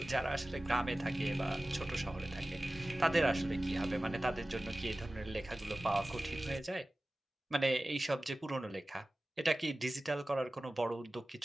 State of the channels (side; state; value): both; normal; correlation 0.96